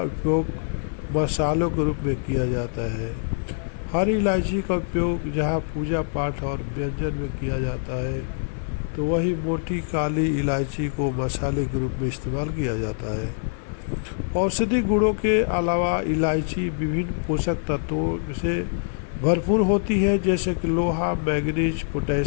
उपयोग मसालों के रूप में किया जाता है। हरी इलायची का उपयोग जहां पूजा पाठ और व्यंजन में किया जाता है, तो वही मोटी काली इलायची को मसाले के रूप में इस्तेमाल किया जाता है। औषधि गुणों के अलावा इलायची विभिन्न पोषक तत्वों से भरपूर होती है, जैसे कि लोहा, manganese,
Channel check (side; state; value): right; silent; 56 dB below the other